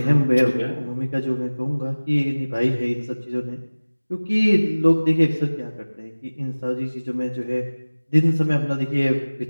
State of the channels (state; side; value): inverted; both; correlation -1.00